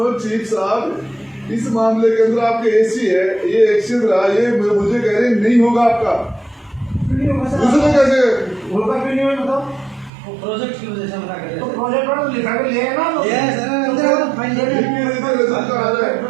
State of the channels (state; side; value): drops out; left; at 10.1 s